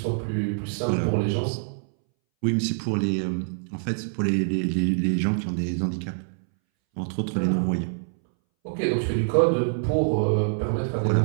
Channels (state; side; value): silent; left; 61 dB below the other